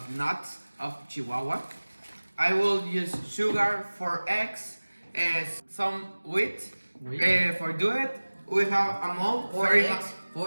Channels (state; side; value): inverted; both; correlation -1.00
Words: nuts of Chihuahua. I will use sugar, 4 eggs, some wheat. For do it, we have a mold. 4 eggs.